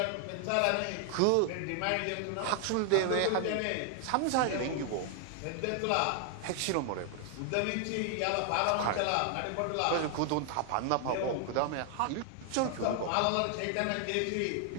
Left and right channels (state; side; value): different; both; correlation 0.00